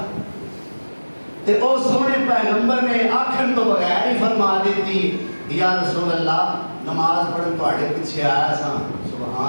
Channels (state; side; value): inverted; both; correlation -1.00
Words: تے او سونے پیغمبر نے آکھن تو بغیر ہی فرما دیتی یا رسول اللہ نماز پڑھن تواڈے پیچھے آیا سا